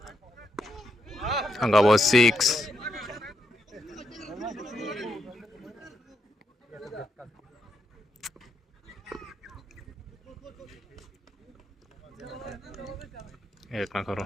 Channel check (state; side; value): normal; both; correlation 0.81